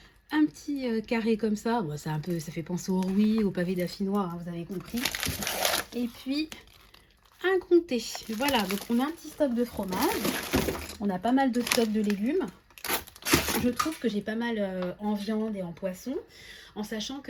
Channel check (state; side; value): identical; both; correlation 1.00